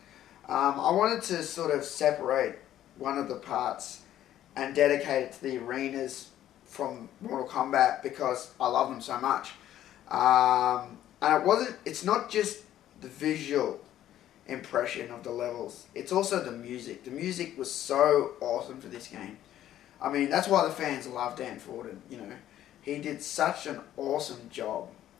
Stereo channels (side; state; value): right; quieter; 12.2 dB